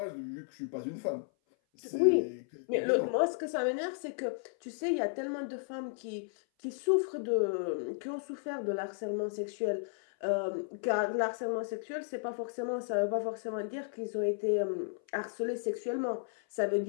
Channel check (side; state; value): right; silent; 55 dB below the other